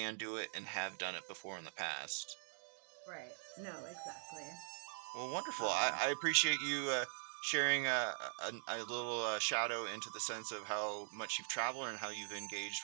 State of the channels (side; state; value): left; silent; digital silence